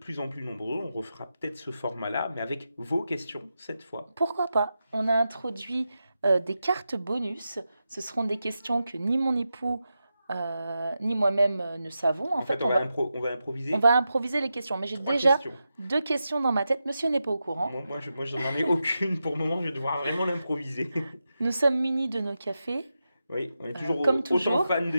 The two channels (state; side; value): inverted; both; correlation -0.89